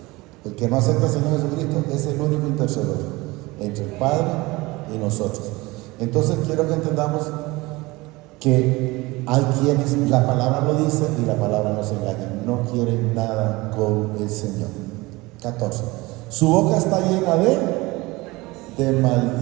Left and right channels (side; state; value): left; quieter; 22.0 dB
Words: El que no acepta al Señor Jesucristo es el único intercedor entre el Padre y nosotros. Entonces quiero que entendamos que hay quienes, la palabra lo dice y la palabra nos engaña, no quieren nada con el Señor. 14. Su boca está llena de